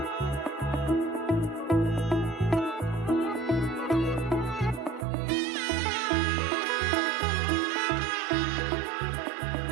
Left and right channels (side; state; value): left; drops out; at 5.1 s